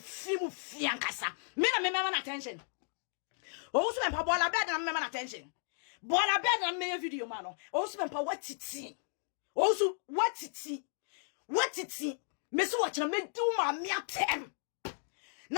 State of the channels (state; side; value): silent; right; digital silence